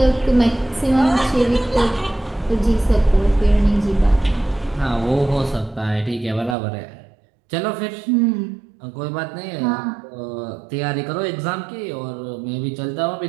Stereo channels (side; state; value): left; drops out; at 6.6 s